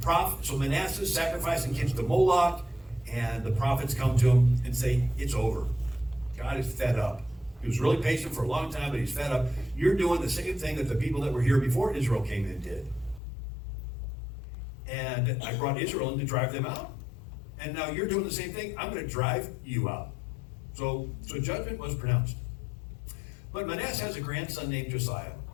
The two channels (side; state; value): right; drops out; at 13.2 s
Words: Manasseh is sacrificing kids to Moloch, and the prophets come to him and say, it's over. God is fed up. He was really patient for a long time, but he's fed up. You're doing the same thing that the people that were here before Israel came in did. And I brought Israel in to drive them out. And now you're doing the same thing. I'm going to drive you out. So judgment was pronounced. But Manasseh has a grandson named Josiah.